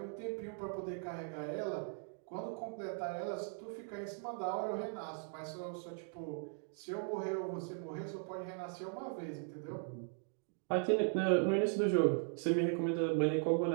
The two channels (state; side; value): silent; left; 52 dB below the other